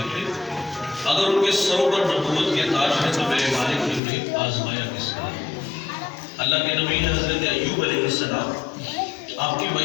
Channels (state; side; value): drops out; right; at 4.0 s